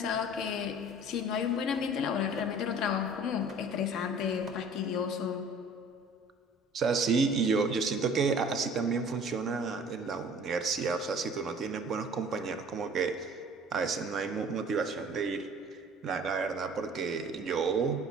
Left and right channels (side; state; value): both; normal; correlation 0.48